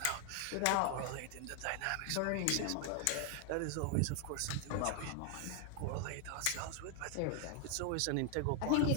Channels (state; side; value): different; both; correlation 0.00